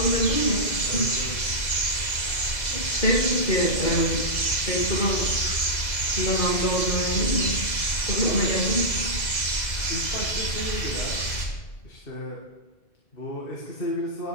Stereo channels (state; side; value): late; right; 2.0 ms